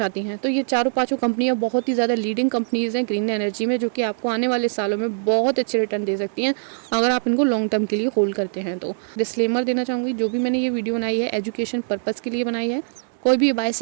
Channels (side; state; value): left; silent; digital silence